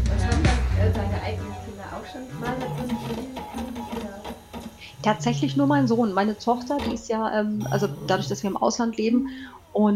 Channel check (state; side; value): identical; both; correlation 1.00